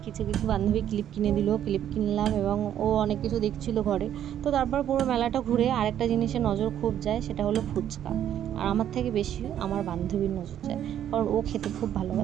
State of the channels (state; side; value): quieter; left; 10.5 dB